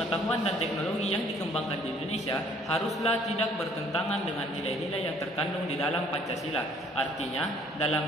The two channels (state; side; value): normal; both; correlation 0.59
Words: dan teknologi yang dikembangkan di Indonesia haruslah tidak bertentangan dengan nilai-nilai yang terkandung di dalam Pancasila. Artinya,